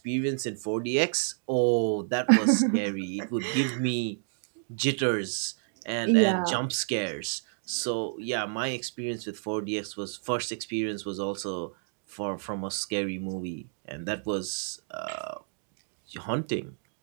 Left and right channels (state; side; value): silent; left; digital silence